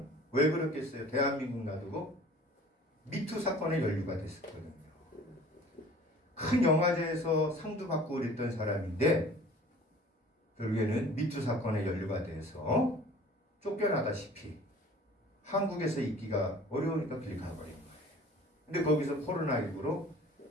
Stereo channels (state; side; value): normal; both; correlation 0.47